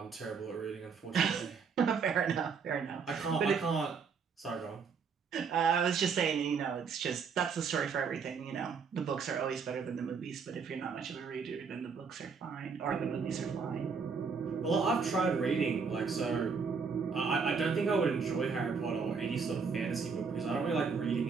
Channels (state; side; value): quieter; left; 5.6 dB